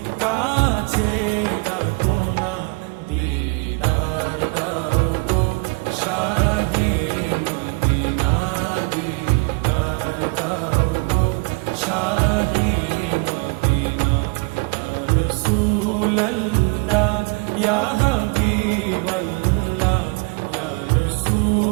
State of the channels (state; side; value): quieter; left; 30.0 dB